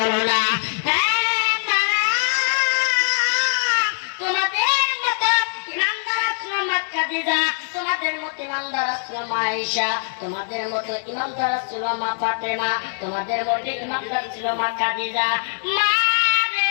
না তোমাদের মতো ইমানদার আসলো খাদিজা তোমাদের মতো ইমানদার আসলো আয়েশা তোমাদের মতো ইমানদার ছিল মা ফাতেমা তোমাদের মতো ইমানদার ছিল মা খাদিজা মা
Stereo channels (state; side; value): silent; right; digital silence